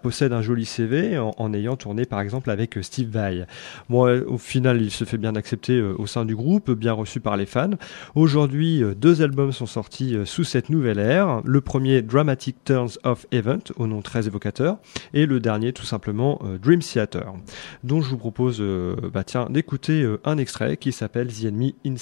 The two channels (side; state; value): right; quieter; 37.0 dB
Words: possède un joli CV en ayant tourné par exemple avec Steve Vai. Bon, au final, il se fait bien accepter au sein du groupe, bien reçu par les fans. Aujourd'hui, 2 albums sont sortis sous cette nouvelle ère. Le premier, Dramatic Turns of Event, au nom très évocateur, et le dernier tout simplement Dream Theater, dont je vous propose d'écouter un extrait qui s'appelle The Enemy